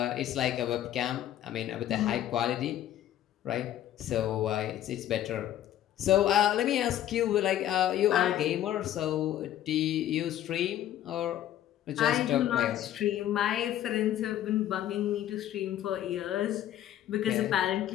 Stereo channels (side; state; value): right; quieter; 12.0 dB